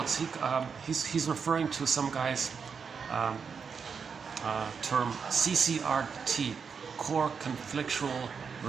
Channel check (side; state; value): left; quieter; 6.0 dB